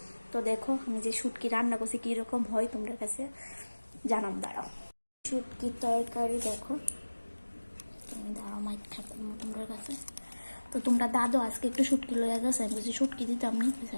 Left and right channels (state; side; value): inverted; both; correlation -1.00